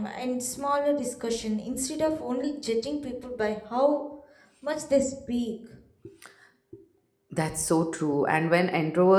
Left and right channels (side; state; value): both; identical; correlation 1.00